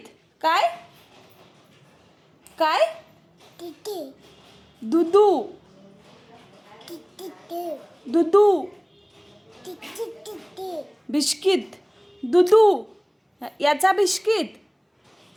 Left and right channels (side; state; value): both; identical; correlation 1.00